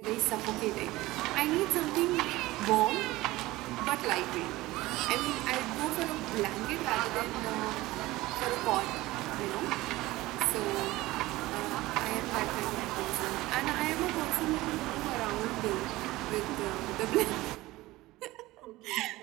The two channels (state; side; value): quieter; left; 18.7 dB